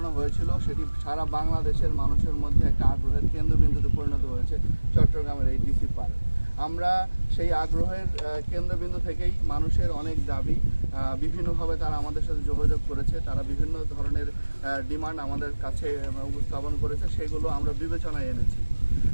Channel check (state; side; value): inverted; both; correlation -1.00